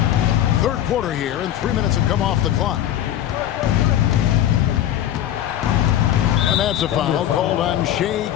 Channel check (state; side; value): quieter; right; 11.8 dB